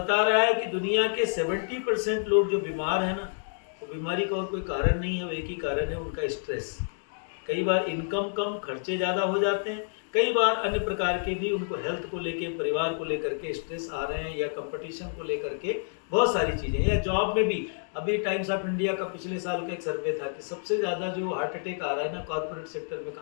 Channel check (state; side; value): silent; right; digital silence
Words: रहा है कि दुनिया के 70% लोग जो बीमार हैं ना, वो बीमारी का और कोई कारण नहीं है, वो एक ही कारण है, उनका स्ट्रेस। कई बार इनकम कम, खर्चे ज़्यादा हो जाते हैं, कई बार अन्य प्रकार के भी उनको हेल्थ को लेके, परिवार को लेकर के स्ट्रेस आ रहे हैं, या कंपटीशन को लेकर के बहुत सारी चीज़ें, या जॉब में भी। अभी टाइम्स ऑफ इंडिया का पिछले साल का एक सर्वे था कि सबसे ज़्यादा जो हार्ट अटैक आ रहा है ना, कॉर्पोरेट सेक्टर में